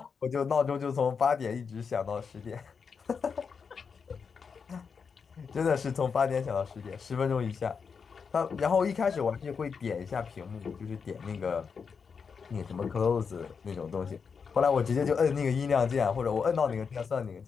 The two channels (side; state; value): right; quieter; 5.9 dB